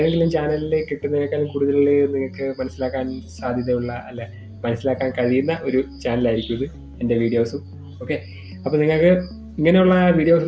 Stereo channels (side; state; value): both; identical; correlation 1.00